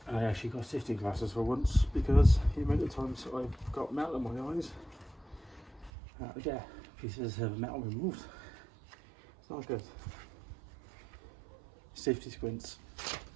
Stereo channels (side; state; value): left; drops out; at 5.9 s